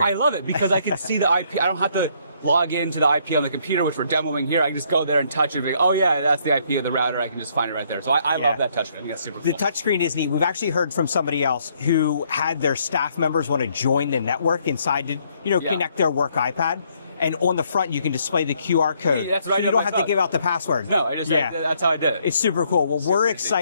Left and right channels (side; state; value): both; inverted; correlation -0.68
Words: I love it because I can see the IP. I don't have to log into the IP on the computer, which we're demoing here. I can just go there and touch it. And oh yeah, that's the IP of the router. I can just find it right there. So I love that touchscreen. I think that's super cool. The touchscreen is neat. We've actually heard from somebody else who had their staff members want to join the network inside to, connect their work iPad. And on the front, you can display the QR code. That's right. So you don't have to give out the password. No, that's how I did it. It's super cool. Well, we're